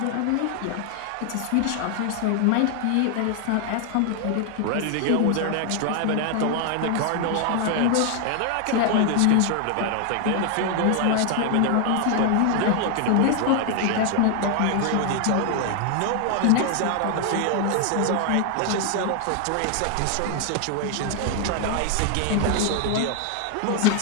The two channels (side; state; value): both; different; correlation 0.00